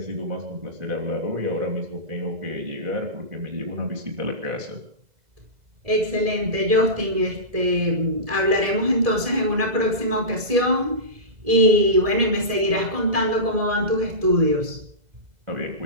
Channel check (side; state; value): left; late; 2.0 ms